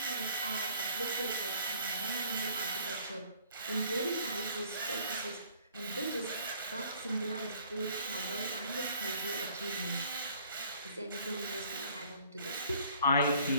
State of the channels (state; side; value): inverted; both; correlation -0.57